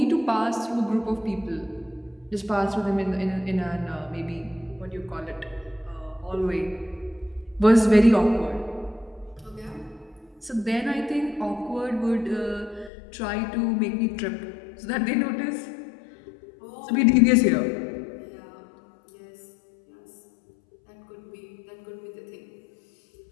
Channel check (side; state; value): right; drops out; at 12.9 s